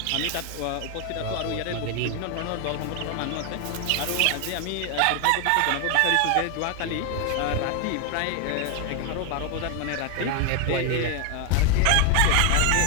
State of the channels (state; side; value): different; both; correlation 0.00